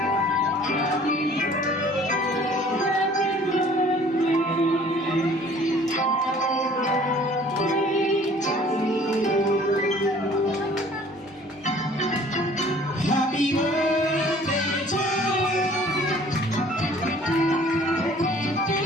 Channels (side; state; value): both; normal; correlation 0.53